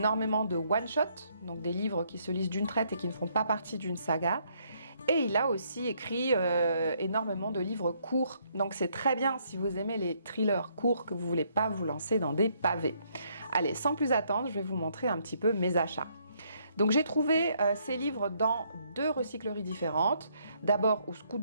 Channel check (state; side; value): inverted; both; correlation -0.70